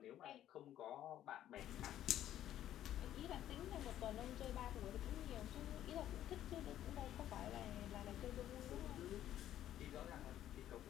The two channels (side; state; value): right; quieter; 12.0 dB